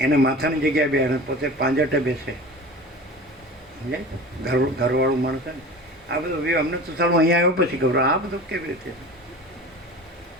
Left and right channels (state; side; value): normal; both; correlation 0.36